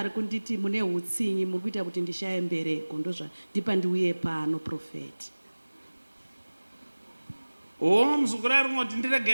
kunditi mune hutsinyi muri kuita kuti ndishaye mbereko, ndozvandipa ndiuye pano prophet. Muzukuru ari kungoti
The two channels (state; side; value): inverted; both; correlation -1.00